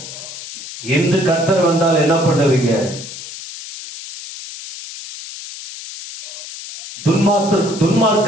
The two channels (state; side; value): noise; left; hiss, 12 dB below the sound